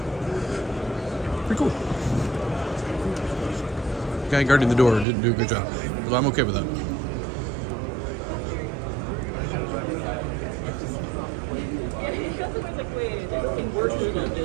Pretty cool. The guy guarding the door didn't do a good job. But I'm okay with that.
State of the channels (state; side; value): drops out; left; at 5.1 s